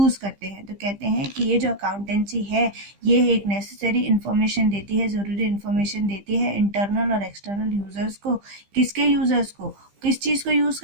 करते हैं। तो कहते हैं कि ये जो अकाउंटेंसी है ये एक नेसेसरी इन्फॉर्मेशन देती है, ज़रूरी इन्फॉर्मेशन देती है इंटरनल और एक्सटर्नल यूज़र्स को। किसके यूज़र्स को, किस चीज़ को यूज़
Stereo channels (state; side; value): late; left; 15 ms